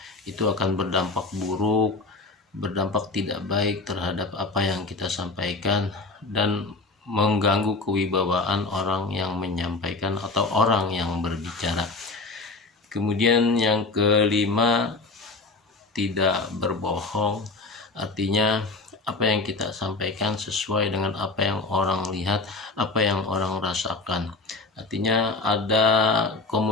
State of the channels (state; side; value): quieter; right; 3.5 dB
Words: Itu akan berdampak buruk, berdampak tidak baik terhadap apa yang kita sampaikan dan mengganggu kewibawaan orang yang menyampaikan atau orang yang berbicara. Kemudian yang kelima, tidak berbohong. Artinya apa yang kita sampaikan sesuai dengan apa yang orang lihat, apa yang orang rasakan. Artinya ada